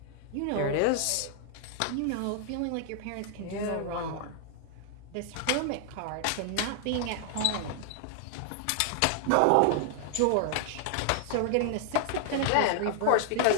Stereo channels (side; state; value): both; different; correlation 0.00